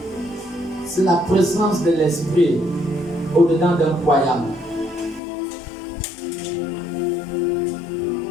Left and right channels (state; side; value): drops out; right; at 5.2 s